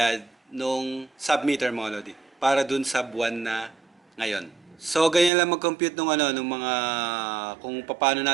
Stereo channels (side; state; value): left; drops out; at 5.3 s